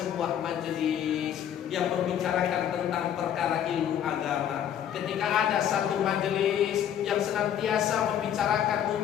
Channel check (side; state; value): right; quieter; 9.8 dB